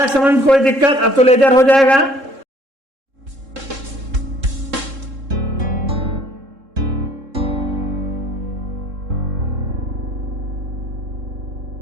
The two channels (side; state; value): left; late; 3.7 ms